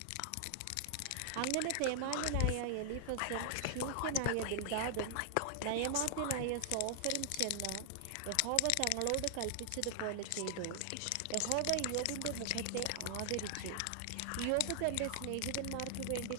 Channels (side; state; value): both; different; correlation 0.00